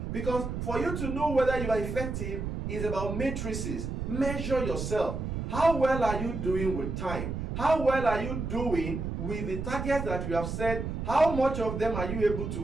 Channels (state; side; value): noise; right; rumble, 4 dB below the sound